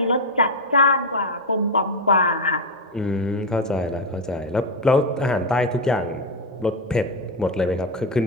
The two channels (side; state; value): both; normal; correlation 0.08